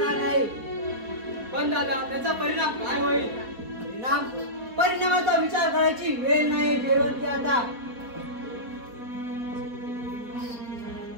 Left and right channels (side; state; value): left; late; 4.2 ms